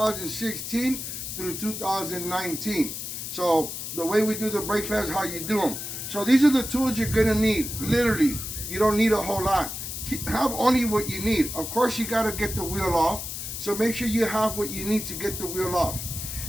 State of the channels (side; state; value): left; noise; hiss, 6 dB below the sound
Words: through 2019. So the way we do the brake pads, how you do them. So these are the tools you're going to need. Literally, you don't need a whole lot. Have only what you need. Of course, you got to get the wheel off. So make sure you have what you need to get the wheel off.